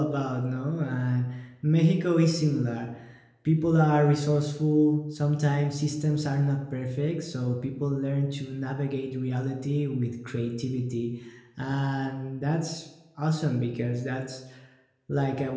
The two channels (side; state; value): both; identical; correlation 1.00